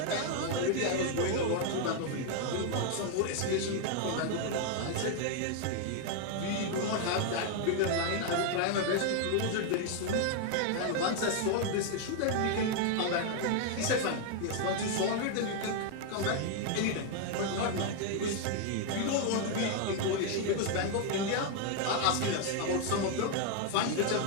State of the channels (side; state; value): both; different; correlation 0.00